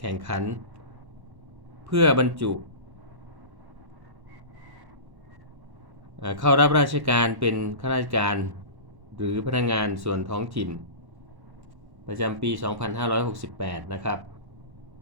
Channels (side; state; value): left; late; 1.1 ms